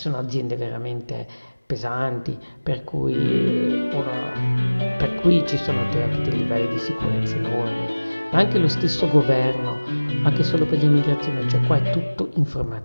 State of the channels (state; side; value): inverted; both; correlation -1.00